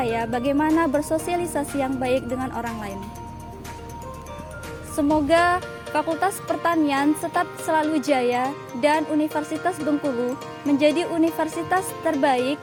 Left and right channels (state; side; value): identical; both; correlation 1.00